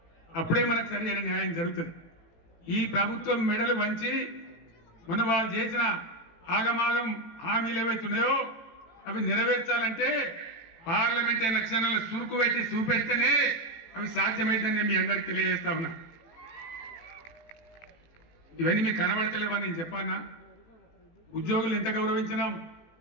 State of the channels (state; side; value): late; right; 18 ms